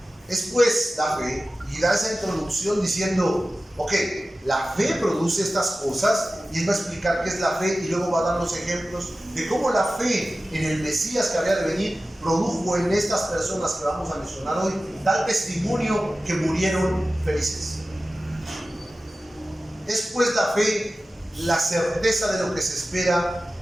pues la fe, y da esa introducción diciendo, ok, la fe produce estas cosas, y él va a explicar qué es la fe y luego va a dar los ejemplos de cómo la fe en el Mesías que había de venir produjo en estas personas que vamos a mencionar hoy tal testimonio que murieron felices. Es pues la fe la certeza de lo que se espera,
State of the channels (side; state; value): both; normal; correlation 0.95